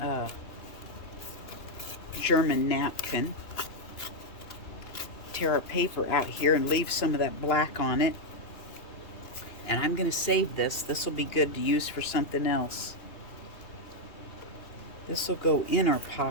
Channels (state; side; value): late; right; 2.8 ms